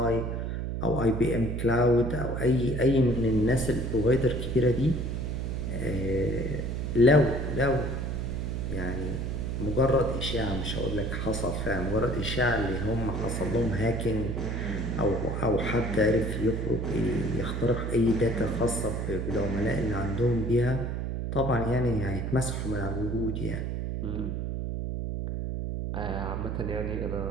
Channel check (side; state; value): right; noise; hum, 2 dB below the sound